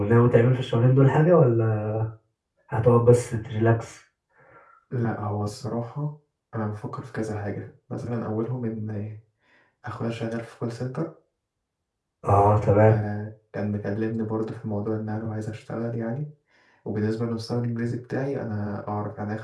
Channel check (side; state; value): both; identical; correlation 1.00